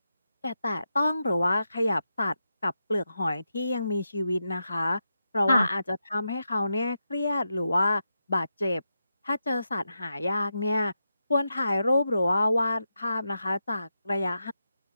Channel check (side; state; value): both; inverted; correlation -0.87